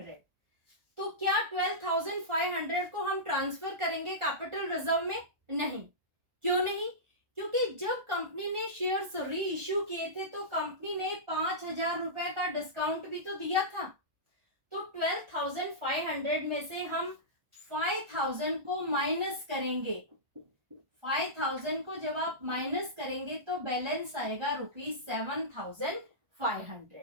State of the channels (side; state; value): left; late; 1.4 ms